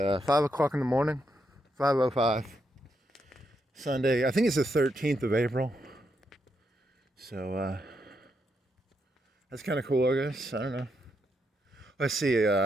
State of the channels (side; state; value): both; normal; correlation 0.80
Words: o'clock in the morning. 5:05. Sunday. I think it's the 13th of April. So that's kind of cool, I guess. I don't know. Let's see.